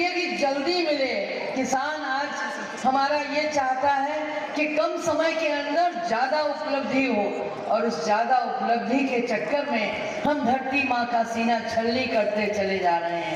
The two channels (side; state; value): both; identical; correlation 1.00